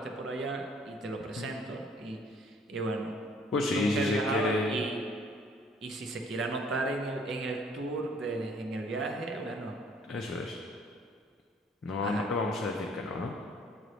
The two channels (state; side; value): normal; both; correlation 0.59